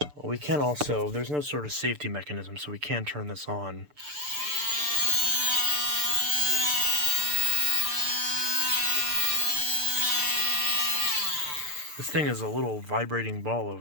Well, we can also, there's no sort of safety mechanism, so we can turn this on. This thing is a little vibrating ball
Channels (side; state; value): left; late; 6.8 ms